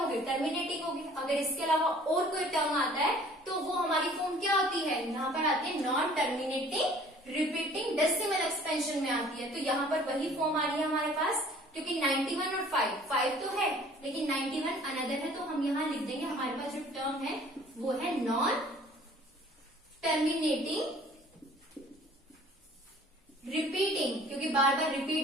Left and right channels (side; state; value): both; normal; correlation 0.52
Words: टर्मिनेटिंग होगी। अगर इसके अलावा और कोई टर्म आता है तो वो हमारी फॉर्म क्या होती है, यहाँ पर आती है non terminating repeating decimal expansion में आती है। तो यहाँ पर वही फॉर्म आ रही है हमारे पास, क्योंकि 91 और 5 तो है लेकिन 91 अनदर है, तो हम यहाँ लिख देंगे हमारे पास जो टर्म है वो है नॉन टर्मिनेटिंग रिपीटिंग, क्योंकि बार बार